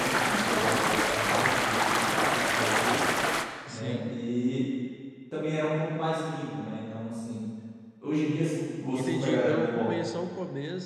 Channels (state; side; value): identical; both; correlation 1.00